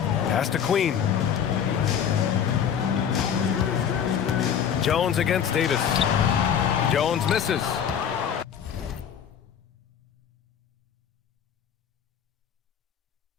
Pass to Queen. Jones against Davis. Jones misses.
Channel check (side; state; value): right; quieter; 8.4 dB